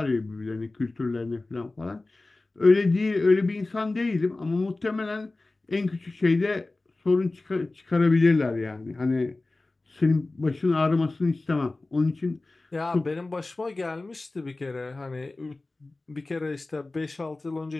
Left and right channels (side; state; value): right; quieter; 3.1 dB